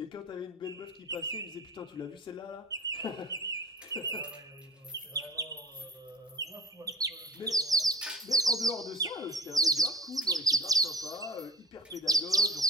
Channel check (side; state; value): both; normal; correlation 0.43